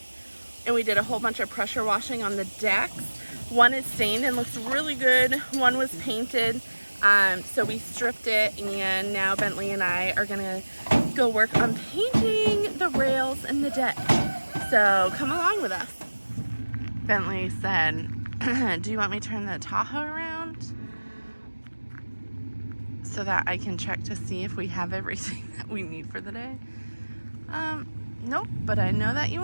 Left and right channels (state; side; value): inverted; both; correlation -1.00